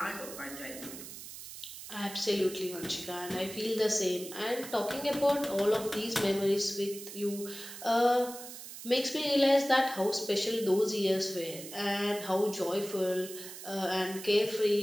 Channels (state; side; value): noise; right; hiss, 12 dB below the sound